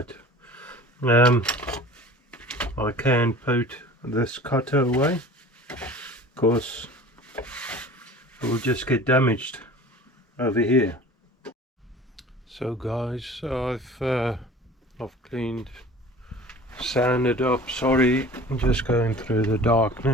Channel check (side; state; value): both; normal; correlation 0.42